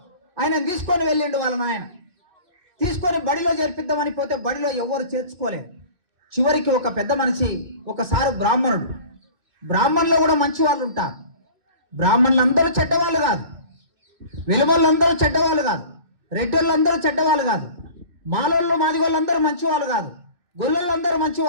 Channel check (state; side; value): late; left; 2.7 ms